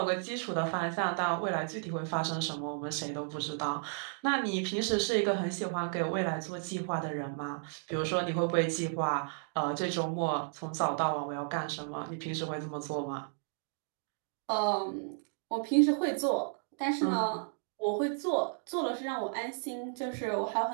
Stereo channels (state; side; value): silent; left; digital silence